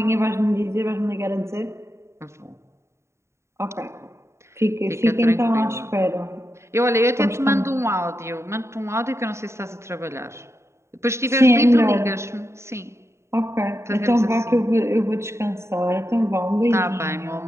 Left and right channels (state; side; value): late; left; 0.13 ms